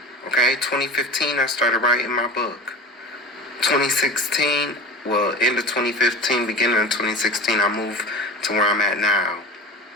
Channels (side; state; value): both; normal; correlation 0.32